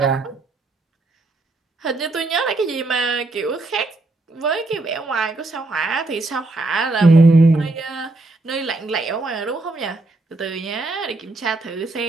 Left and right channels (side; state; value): left; quieter; 3.1 dB